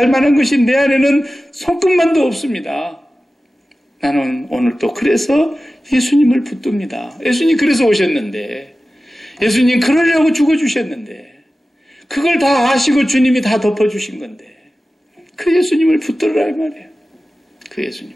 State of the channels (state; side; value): normal; both; correlation 0.95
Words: 만한 것이 내 안에는 손끝만도 없습니다. 나는 오늘 또 그래서 예수님을 붙듭니다. 예수님 그래서 오셨는데, 예수님 그러려고 죽어주셨는데, 그걸 다 아시고 주님이 다 덮어주신 건데, 그 예수님을 붙들으라 이 말이에요. 그